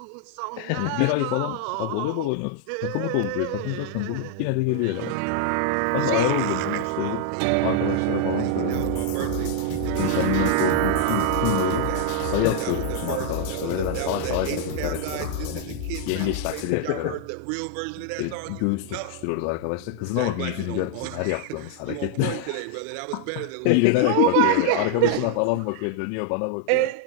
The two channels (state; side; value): different; both; correlation 0.00